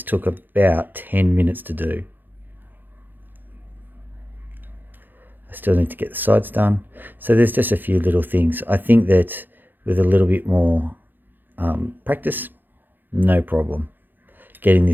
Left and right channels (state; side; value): late; left; 0.090 ms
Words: took about 10 minutes to do. I still need to get the sides done. So there's just a few little things. I think that with a little bit more practice, no problem. Getting